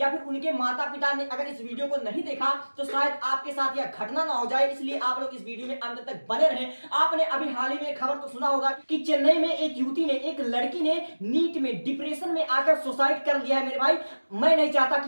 फिर उनके माता पिता ने अगर इस वीडियो को नहीं देखा तो शायद आपके साथ यह घटना ना हो जाए, इसलिए आप लोग इस वीडियो में अंत तक बने रहें। आपने अभी हाल ही में खबर तो सुना होगा कि चेन्नई में एक युवती ने, एक लड़की ने नीट में डिप्रेशन में आकर सुसाइड कर लिया है। मेरे भाई मैं नहीं चाहता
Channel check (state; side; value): inverted; both; correlation -1.00